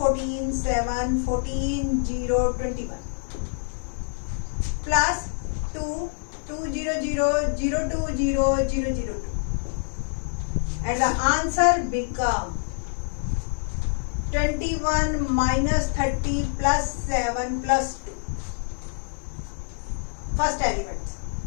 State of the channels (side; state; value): right; silent; digital silence